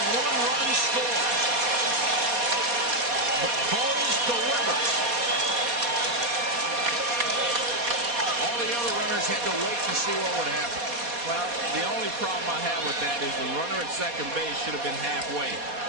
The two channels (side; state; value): left; late; 4.2 ms